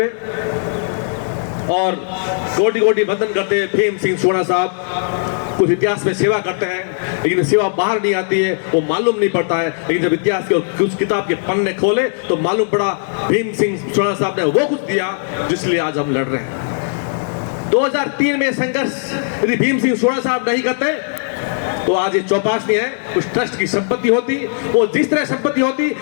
और कोटि कोटि वंदन करते हुए भीम सिंह सोना साहब कुछ इतिहास में सेवा करते हैं, लेकिन सेवा बाहर नहीं आती है, वो मालूम नहीं पड़ता है। लेकिन जब इतिहास के कुछ किताब के पन्ने खोले तो मालूम पड़ा भीम सिंह सोना साहब ने वो कुछ दिया जिसलिए आज हम लड़ रहे हैं। 2003 में संघर्ष यदि भीम सिंह सोना साहब नहीं करते तो आज ये चौपाशनी है उस ट्रस्ट की संपत्ति होती, वो जिस तरह संपत्ति होती,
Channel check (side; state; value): right; silent; digital silence